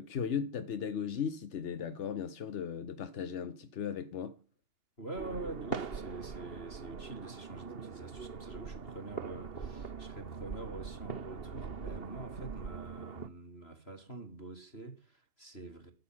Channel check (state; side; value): late; right; 3.0 ms